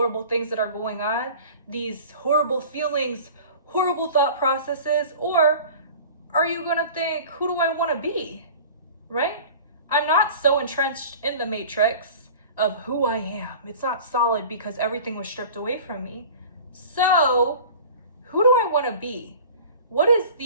things that are going on, these horrible feelings, horrible thought processes, or are you gonna think, who do I wanna be, right? I'm not so entrenched in the matrix of who I am. It's not solid because everything was stripped away from me. So who do I wanna be? What is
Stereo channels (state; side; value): inverted; both; correlation -0.41